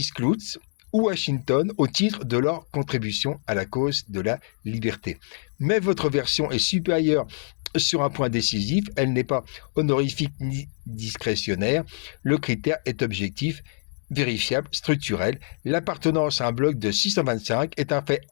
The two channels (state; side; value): silent; right; 62 dB below the other